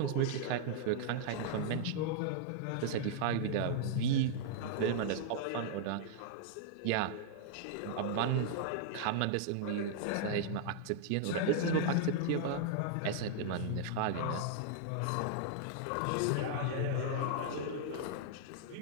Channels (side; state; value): both; different; correlation -0.01